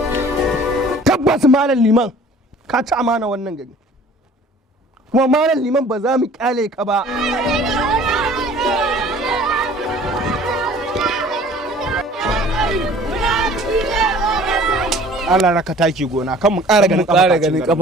Tabbas malam liman ka ci amana wannan gari kuma malam liman ba za mu kyale ka ba. Allah raka taki gona kan mu ƙara ganin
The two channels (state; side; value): normal; both; correlation 0.50